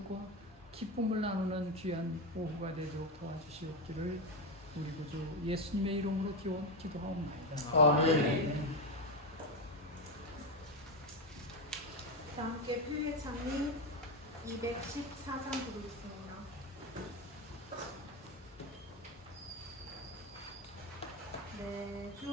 기쁨을 나누는 귀한 오후가 되도록 도와주시옵기를 우리 구주 예수님의 이름으로 기도하옵나이다. 아멘. 다 함께 표의 창리 214장 부르겠습니다. 내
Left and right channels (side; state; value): both; normal; correlation 0.11